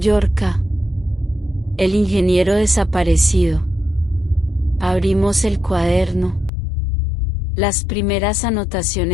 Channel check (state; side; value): drops out; right; at 6.5 s